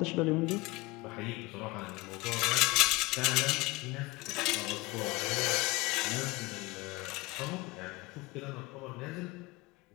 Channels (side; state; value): right; quieter; 22.6 dB